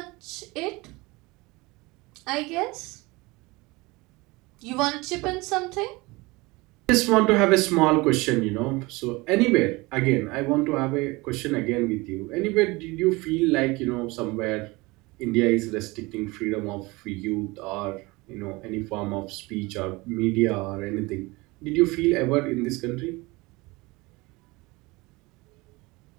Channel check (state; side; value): quieter; left; 23.4 dB